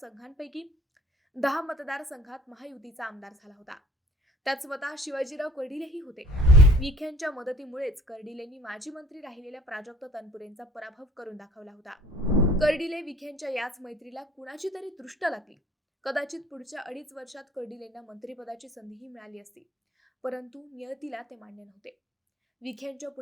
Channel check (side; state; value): both; normal; correlation 0.51